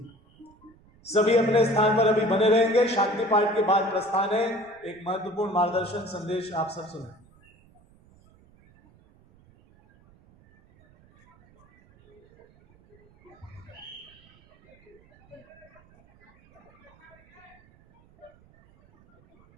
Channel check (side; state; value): right; noise; rumble, 29 dB below the sound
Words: सभी अपने स्थान पर अभी बने रहेंगे। शांति पाठ के बाद प्रस्थान है। एक महत्वपूर्ण मार्गदर्शन संदेश आप सब सुनें।